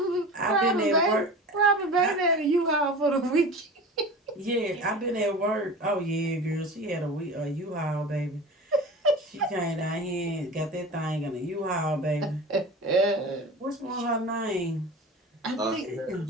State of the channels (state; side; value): normal; both; correlation 0.34